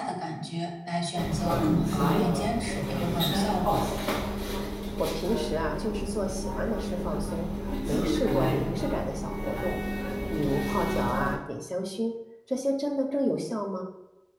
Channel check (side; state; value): both; identical; correlation 1.00